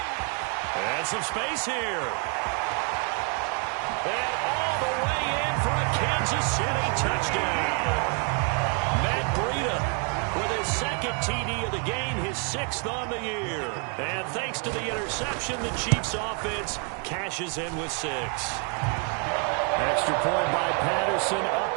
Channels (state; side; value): quieter; left; 39.2 dB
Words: And some space here. And all the way in for a Kansas City touchdown. Matt Breida with his 2nd TD of the game, his 6th on the year. And thanks to the interception, the Chiefs offense cashes in with 6. Extra point by Patterson,